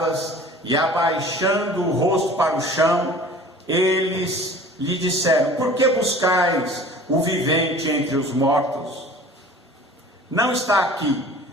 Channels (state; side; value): normal; both; correlation 0.44